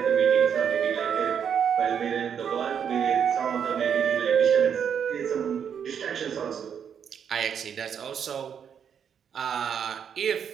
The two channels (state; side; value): quieter; left; 7.8 dB